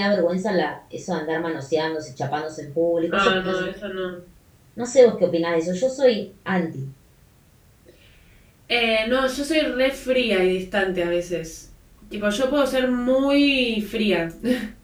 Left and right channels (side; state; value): both; identical; correlation 1.00